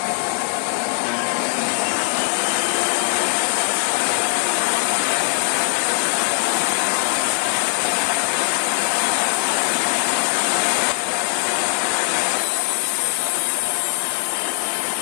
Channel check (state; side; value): silent; right; digital silence